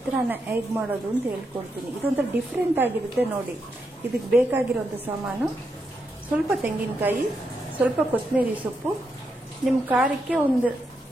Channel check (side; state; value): both; normal; correlation 0.82